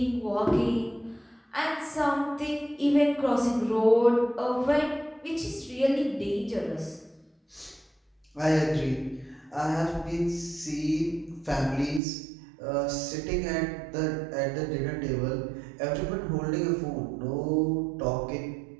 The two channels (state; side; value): drops out; left; at 12.0 s